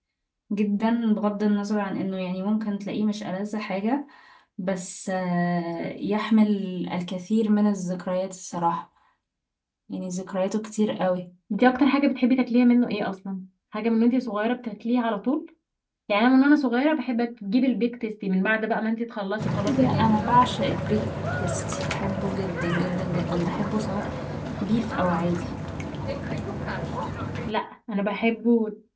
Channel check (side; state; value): both; identical; correlation 1.00